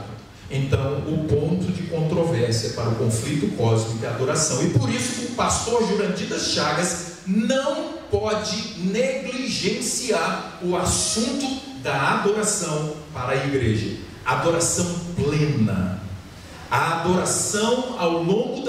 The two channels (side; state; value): both; identical; correlation 1.00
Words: Então, o ponto de controvérsia para o conflito cósmico é a adoração. E por isso o pastor Jurandir das Chagas não pode negligenciar o assunto da adoração para a igreja. Adoração plena. A adoração ao longo